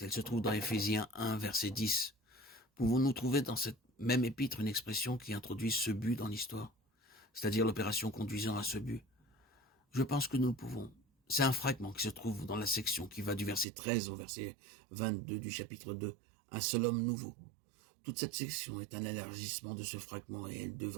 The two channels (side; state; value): left; drops out; at 13.7 s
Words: Elle se trouve dans Éphésiens 1, verset 10. Pouvons-nous trouver dans cette même épître une expression qui introduit ce but dans l'histoire, c'est-à-dire l'opération conduisant à ce but? Je pense que nous le pouvons. C'est un fragment qui se trouve dans la section qui va du verset 13 au verset 22 du chapitre 2, un seul homme nouveau. Toute cette section est un élargissement de ce fragment et elle